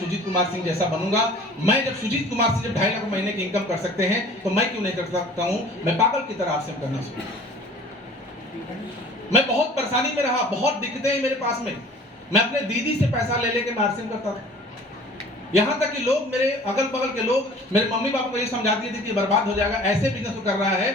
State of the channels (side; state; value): both; normal; correlation 0.47